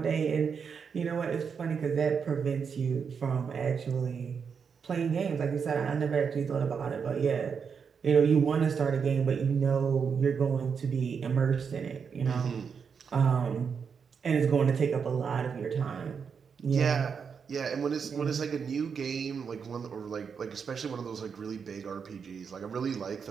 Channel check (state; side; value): quieter; left; 6.3 dB